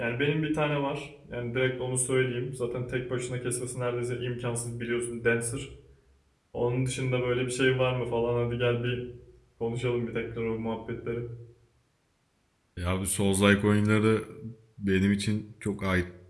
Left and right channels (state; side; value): identical; both; correlation 1.00